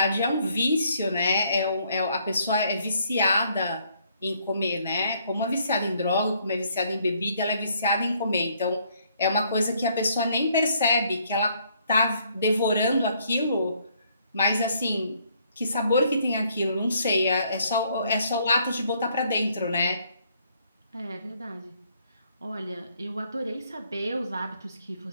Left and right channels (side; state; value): both; inverted; correlation -0.68